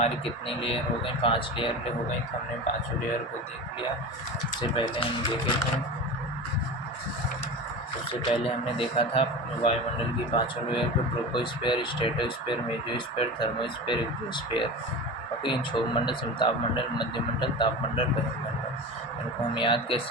कितनी लेयर हो गई? 5 लेयर हो गई। तो हमने 5 लेयर को देख लिया। सबसे पहले हम देखे थे, सबसे पहले हमने देखा था वायुमंडल की 5 लेयर को, troposphere, stratosphere, mesosphere, thermosphere, exosphere. Okay, इन क्षोभ मंडल, समताप मंडल, मध्य मंडल, ताप मंडल, बहिर्मंडल। इनको हम याद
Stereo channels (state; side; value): normal; both; correlation 0.30